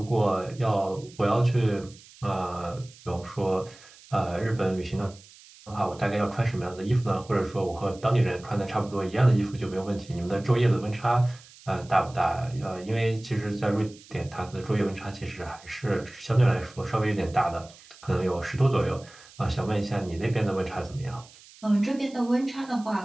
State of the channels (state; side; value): noise; right; hiss, 23 dB below the sound